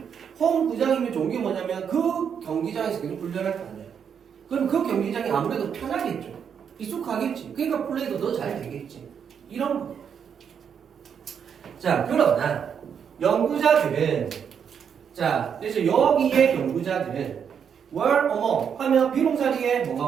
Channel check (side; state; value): left; quieter; 7.5 dB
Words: 홈구장이면 좋은 게 뭐냐면 그 경기장에서 계속 훈련할 거 아니야. 그럼 그 경기장이 아무래도 편하겠죠. 익숙하겠지. 그러니까 플레이도 더 잘 되겠지. 이런 거. 자 그러나 연구자들은 자 그래서 여기에 연구자들은 were among 하면 비동사 뒤에 뭐가